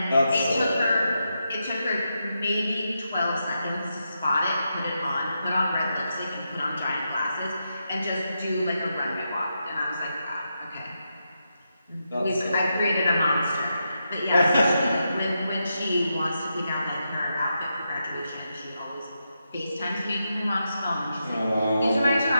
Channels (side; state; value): both; inverted; correlation -0.85